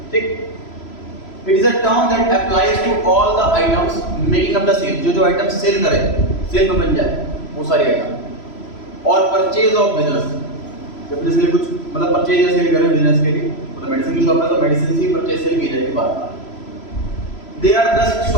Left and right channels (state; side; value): late; right; 3.0 ms